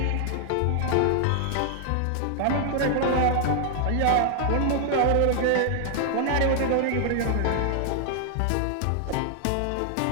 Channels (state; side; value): different; both; correlation 0.00